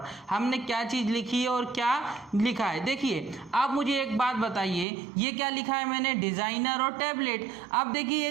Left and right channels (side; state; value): left; drops out; at 4.9 s